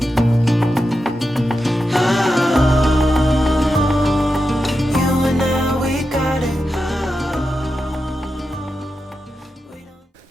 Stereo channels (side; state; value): both; normal; correlation 0.89